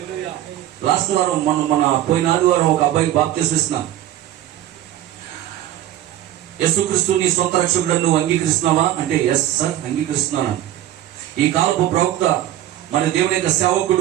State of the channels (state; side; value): quieter; left; 12.8 dB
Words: లాస్ట్ వారం మన పోయిన ఆదివారం ఒక అబ్బాయికి బాప్తిస్మం ఇస్తున్నాను. యేసుక్రీస్తు నీ సొంత రక్షకుడు నువ్వు అంగీకరిస్తున్నావా అంటే ఎస్ సార్ అంగీకరిస్తున్నాను. ఈ కాలపు ప్రవక్త మన దేవుని యొక్క